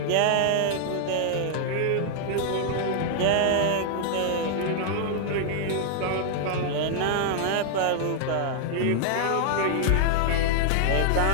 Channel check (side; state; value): both; different; correlation 0.00